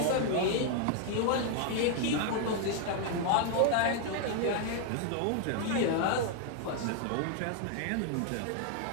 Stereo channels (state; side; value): different; both; correlation 0.00